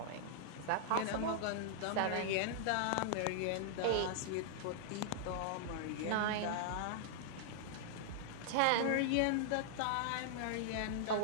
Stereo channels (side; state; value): both; different; correlation -0.01